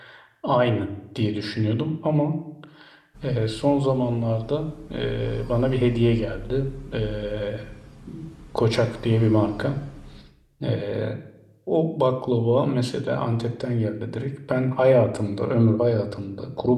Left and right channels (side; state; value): both; identical; correlation 1.00